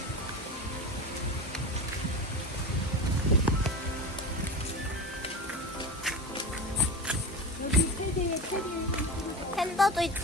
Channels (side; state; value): both; normal; correlation 0.27